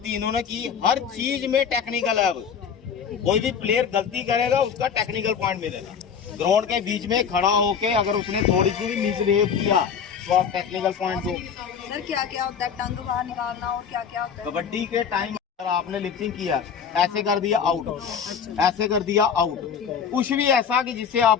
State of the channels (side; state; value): right; quieter; 7.1 dB